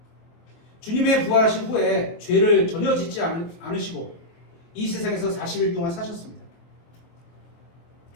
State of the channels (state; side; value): late; right; 23 ms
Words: 주님의 부활하신 후에 죄를 전혀 짓지 않으시고 이 세상에서 40일 동안 사셨습니다.